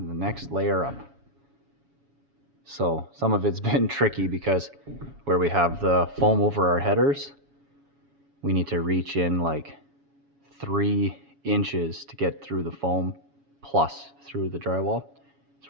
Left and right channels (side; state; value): left; late; 7.2 ms